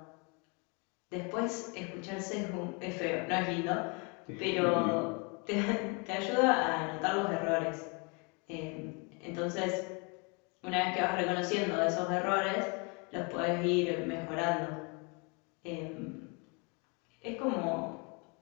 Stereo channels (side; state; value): right; quieter; 32.6 dB